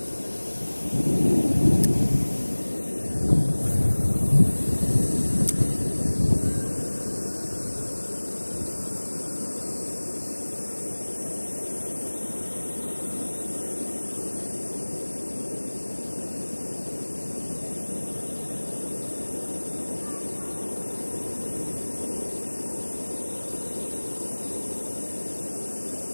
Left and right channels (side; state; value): both; inverted; correlation -1.00